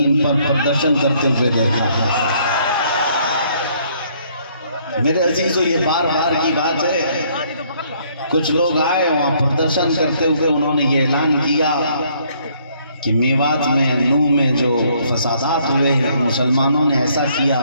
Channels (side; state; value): both; inverted; correlation -0.65